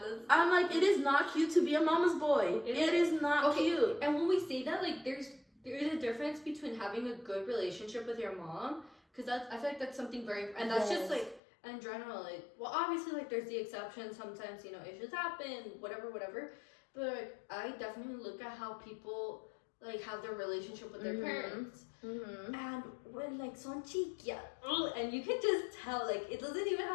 I'm like, it is not cute to be a mama's boy. It is not cute. And when we say that, like there is a difference between having a good relationship with your mom, because I feel like that's something very, and that's just like in general, like, well, obviously, like, there's the exceptions. Sometimes, you know, issues happen, whatever. But, like, I definitely look at how people, like, have their relationship with their parents. And when, like, son chiquilla, and you can just tell, like, it doesn't even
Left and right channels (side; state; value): right; drops out; at 11.4 s